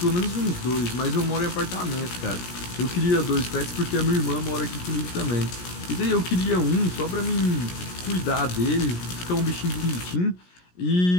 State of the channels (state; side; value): late; right; 17 ms